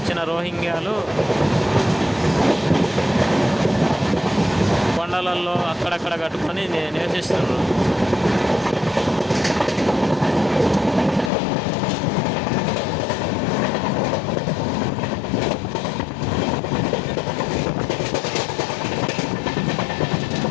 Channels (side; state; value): right; drops out; at 11.3 s